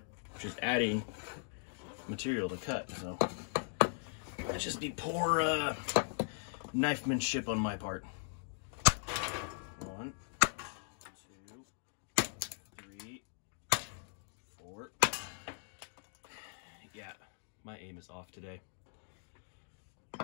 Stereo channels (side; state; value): right; silent; digital silence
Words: which is adding material to cut. So that'd just be poor knifemanship on my part. 1, 2, 3, 4. Yeah, my aim is off today.